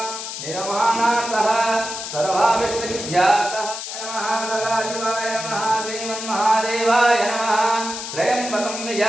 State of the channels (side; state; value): left; noise; hiss, 7 dB below the sound